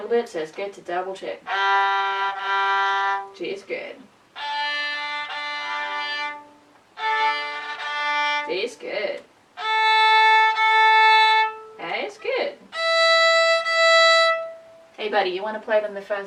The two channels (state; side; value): identical; both; correlation 1.00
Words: bit, so it's good to double check. G is good. D is good. A is good. Hey buddy, you want to play them the